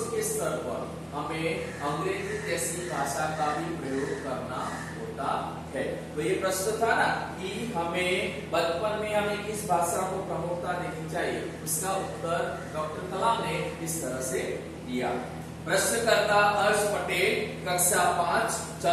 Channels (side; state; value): both; identical; correlation 1.00